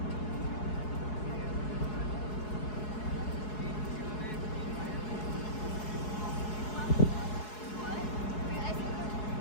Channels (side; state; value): right; late; 4.7 ms